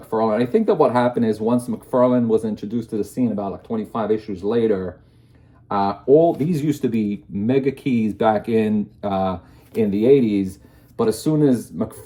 I think that what happened is once McFarlane was introduced to the scene about like 25 issues later, all these used to be mega keys back in the 80s. But as soon as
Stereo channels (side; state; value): both; identical; correlation 1.00